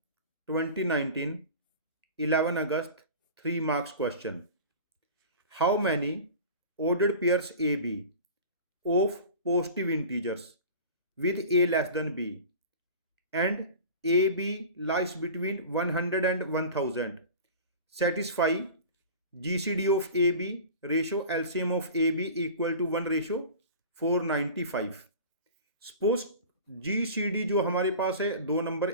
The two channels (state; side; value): inverted; both; correlation -0.37